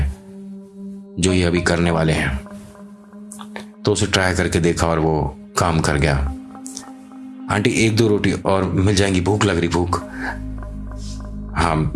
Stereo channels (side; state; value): both; identical; correlation 1.00